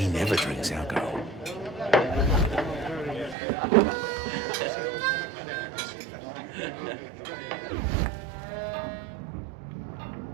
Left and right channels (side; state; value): left; drops out; at 3.4 s